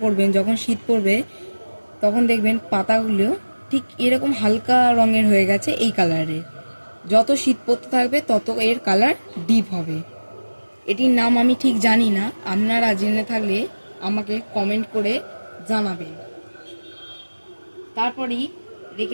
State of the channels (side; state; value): both; inverted; correlation -1.00